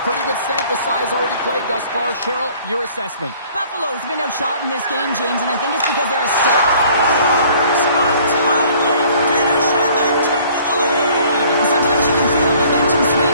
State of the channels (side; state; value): both; inverted; correlation -0.55